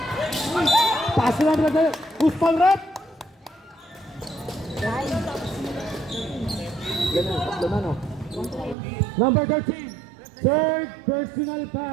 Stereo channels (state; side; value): drops out; left; at 8.8 s